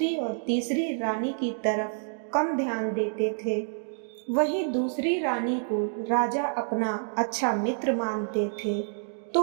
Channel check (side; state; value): left; silent; digital silence